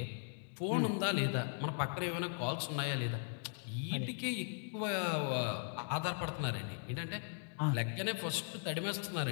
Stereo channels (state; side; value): silent; right; digital silence